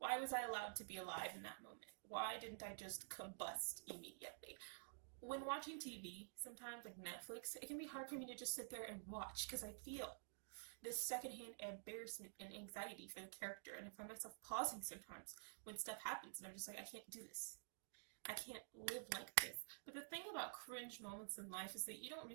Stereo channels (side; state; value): left; silent; digital silence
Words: I allowed to be alive in that moment? Why didn't I just combust immediately? When watching TV, sometimes like Netflix, it can be hard for me to just sit there and watch because I feel this secondhand embarrassment and anxiety for the character, and I find myself pausing sometimes when stuff happens, and I'm just like, I can't do this. I can't live like this. But the thing about cringe moments in life is that you don't